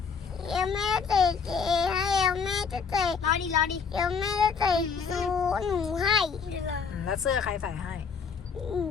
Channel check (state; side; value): quieter; right; 5.8 dB